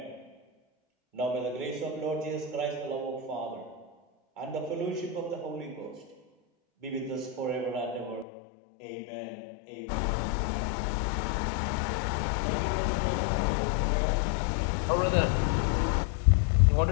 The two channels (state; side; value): drops out; right; at 8.2 s